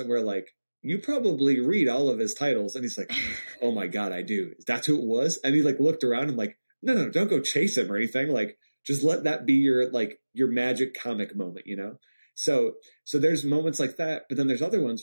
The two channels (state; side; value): inverted; both; correlation -1.00